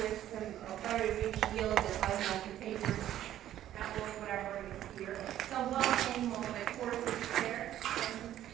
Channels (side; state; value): left; quieter; 12.3 dB